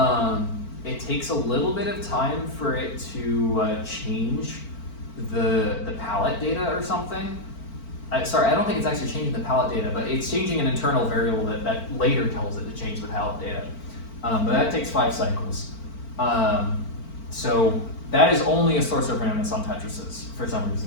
It takes a little bit of time for it to change the palette data or something. Sorry, I don't think it's actually changing the palette data, but it's changing an internal variable that later tells it to change the palette data. But that takes 5 cycles. So that is only a source of randomness on Tetrises for some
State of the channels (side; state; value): right; late; 4.4 ms